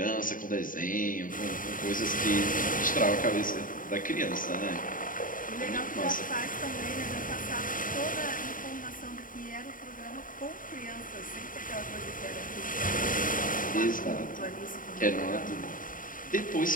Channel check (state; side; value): late; right; 0.39 ms